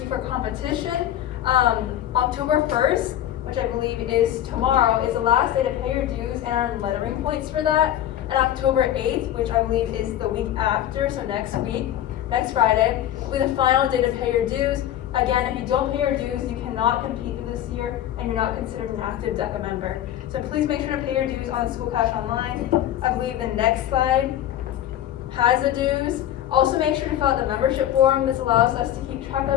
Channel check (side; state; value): right; quieter; 11.8 dB